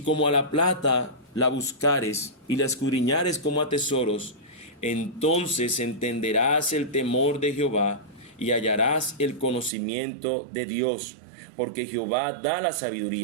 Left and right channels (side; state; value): left; drops out; at 9.7 s